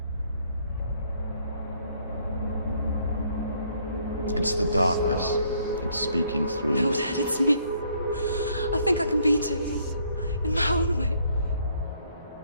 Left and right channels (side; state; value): both; inverted; correlation -0.66